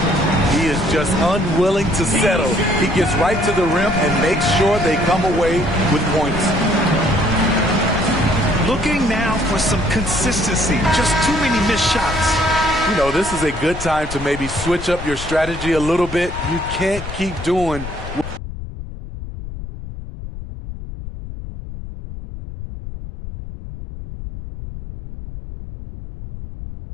He is just unwilling to settle. He gets right to the rim and makes sure they come away with points. Looking now for some consistency. Just too many missed shots. You know, this is a good time to maybe switch up your strategy a little bit. You can't keep doing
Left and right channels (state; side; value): noise; left; rumble, 10 dB below the sound